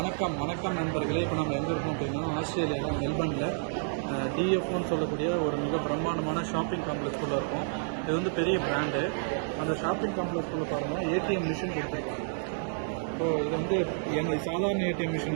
நண்பர்களே. இப்போ நம்ம எங்கே இருக்கோம் அப்படின்னா ஆஸ்திரேலியாவில் மெல்பர்னில் டிஎஃப்னு சொல்லக்கூடிய ஒரு மிக பிரம்மாண்டமான ஷாப்பிங் காம்ப்ளெக்ஸ்குள்ளே இருக்கும். இது வந்து பெரிய பிராண்டு. அந்த ஷாப்பிங் காம்ப்ளெக்ஸ்குள்ளே பாருங்கள் ஏடிஎம் மிஷின் கொடுத்துருக்காங்க. ஸோ இது வந்து எங்கள் சாதாரண ஏடிஎம்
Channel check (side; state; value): left; silent; digital silence